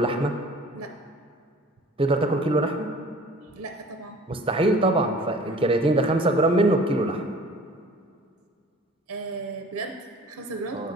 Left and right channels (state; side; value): normal; both; correlation 0.47